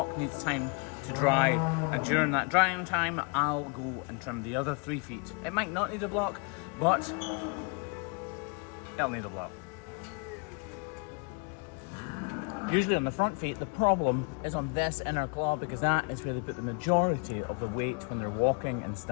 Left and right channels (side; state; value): right; quieter; 34.2 dB